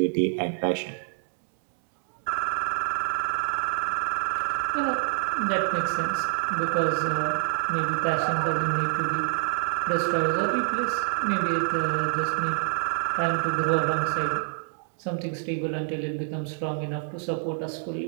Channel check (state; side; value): silent; left; digital silence